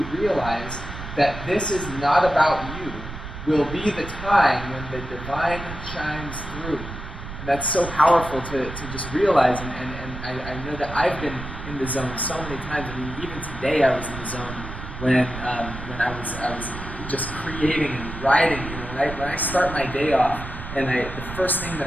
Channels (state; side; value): noise; right; rumble, 10 dB below the sound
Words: realize that this is not about you will be the time when the divine shines through. And that's so powerful to just realize, and I know that I've been in the zone so many times. I mean, even today I was in the zone when I was just creating and writing. You know, when I start my day off, and the first thing that